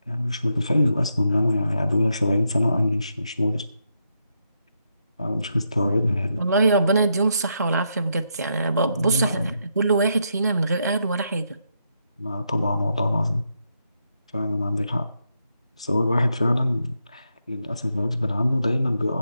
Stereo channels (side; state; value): both; inverted; correlation -0.81